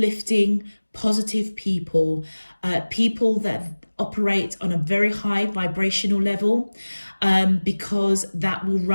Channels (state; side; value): inverted; both; correlation -1.00